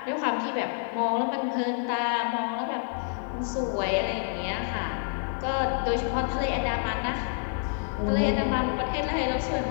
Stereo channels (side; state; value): right; silent; 59 dB below the other